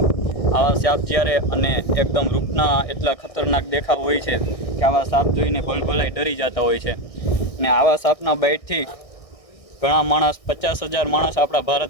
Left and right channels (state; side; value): late; right; 1.6 ms